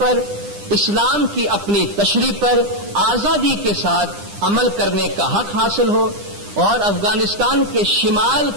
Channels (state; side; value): late; left; 9.9 ms